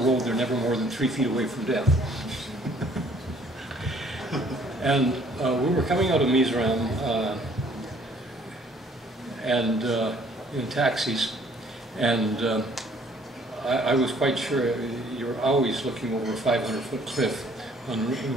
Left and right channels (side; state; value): both; normal; correlation 0.59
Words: they're never more than 3 feet away from death. And we were coming out of Mizoram and in taxis, and I was quite sure you're always looking over a 500-foot cliff on the